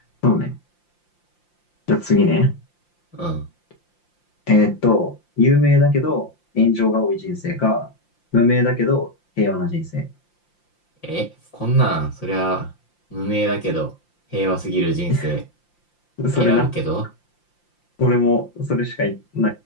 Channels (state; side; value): late; right; 5.8 ms